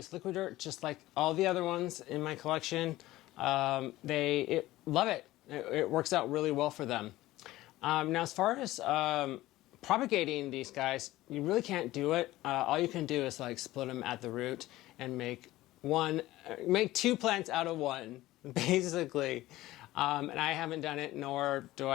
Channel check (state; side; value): quieter; right; 16.8 dB